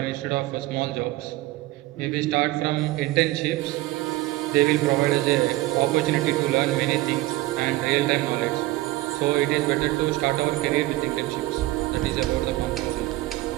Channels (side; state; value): left; quieter; 18.1 dB